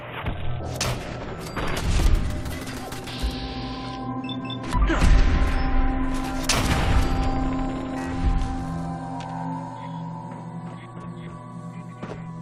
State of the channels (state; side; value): identical; both; correlation 1.00